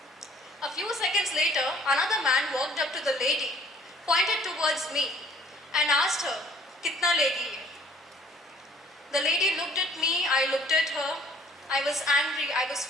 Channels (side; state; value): both; normal; correlation 0.57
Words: A few seconds later, another man walked up to the lady, pointed towards me, and asked her, "Kitna legi ye?" The lady looked at me, I looked at her. I was angry, I was